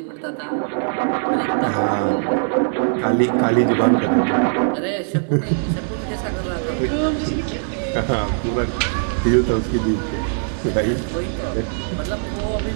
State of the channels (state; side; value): silent; left; 65 dB below the other